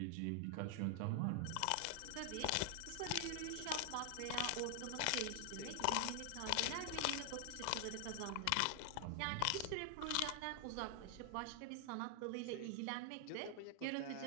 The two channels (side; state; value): both; different; correlation 0.00